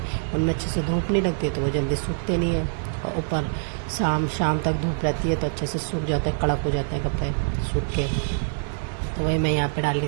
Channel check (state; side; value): silent; left; digital silence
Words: उनमें अच्छे से धूप नहीं लगती, तो वो जल्दी सूखते नहीं है। और ऊपर शाम तक धूप रहती है तो अच्छे से सूख जाते हैं, कड़क हो जाते हैं कपड़े सूख के। तो वही मैं यहाँ पे डाल रही